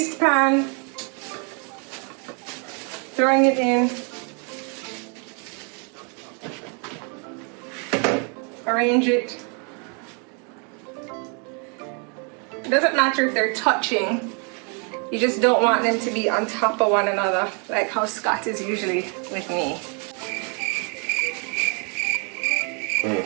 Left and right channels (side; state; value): left; quieter; 36.6 dB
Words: pan. Throwing it in. Arrange it. It doesn't matter if they're touching. You just don't want them to be on top of one another, like how Scott is usually with me.